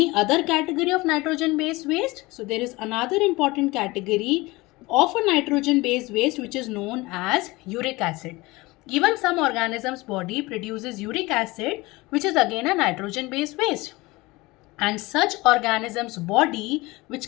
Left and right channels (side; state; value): right; quieter; 21.9 dB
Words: other category of nitrogen based waste, so there is another important category of a nitrogen based waste which is known as uric acid. Even some organisms body produces uric acid, which is again a nitrogen based waste. And such organisms body